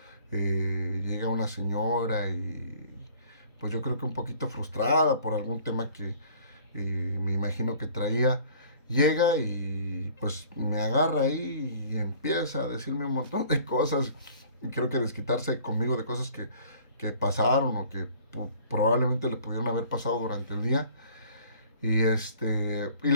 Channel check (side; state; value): both; inverted; correlation -0.52